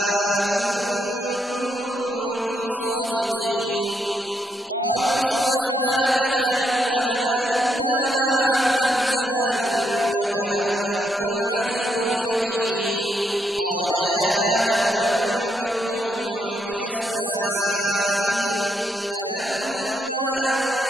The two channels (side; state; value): both; normal; correlation 0.77